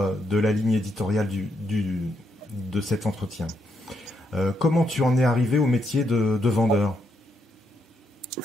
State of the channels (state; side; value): normal; both; correlation 0.78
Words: de la ligne éditoriale de cet entretien. Comment tu en es arrivé au métier de vendeur